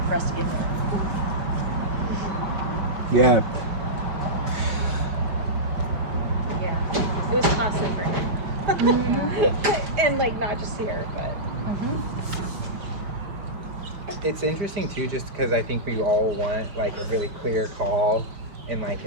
for us to get there. Yeah. Yeah, it was costly for him. And like not just here, but It's interesting too, just because I think we all want like a really clear call and like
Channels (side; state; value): left; late; 5.6 ms